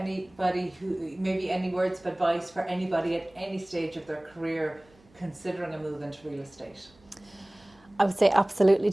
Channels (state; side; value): noise; right; hum, 30 dB below the sound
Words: maybe any words of advice for anybody at any stage of their career considering a move into real estate? I would say absolutely